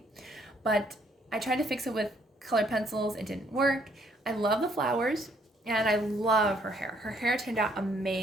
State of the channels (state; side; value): normal; both; correlation 0.67